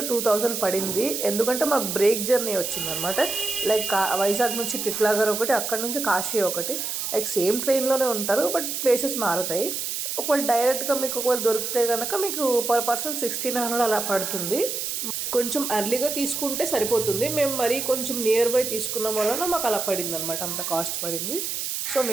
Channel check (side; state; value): right; noise; hiss, 3 dB below the sound